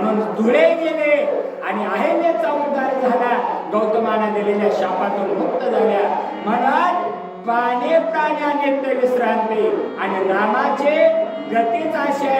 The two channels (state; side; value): identical; both; correlation 1.00